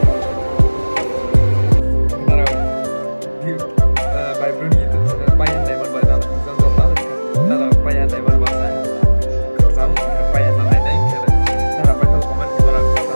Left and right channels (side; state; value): both; inverted; correlation -1.00